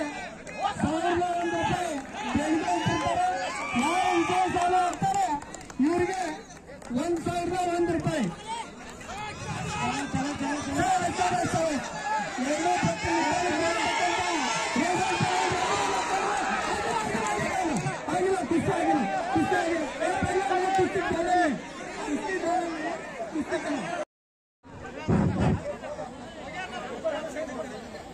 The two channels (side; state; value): both; identical; correlation 1.00